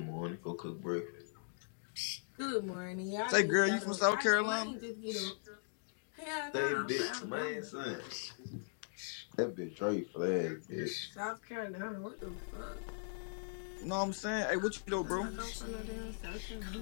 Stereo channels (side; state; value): right; silent; digital silence